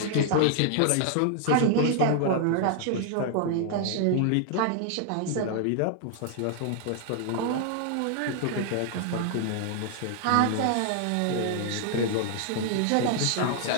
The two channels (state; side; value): different; both; correlation 0.00